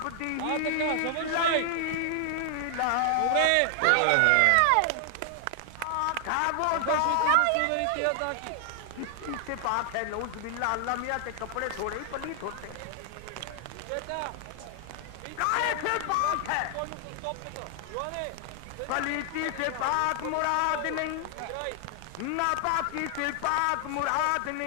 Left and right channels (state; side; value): different; both; correlation 0.00